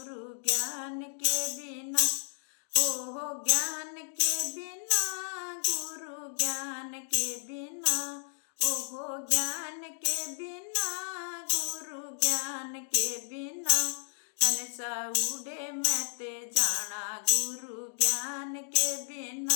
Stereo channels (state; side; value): silent; right; digital silence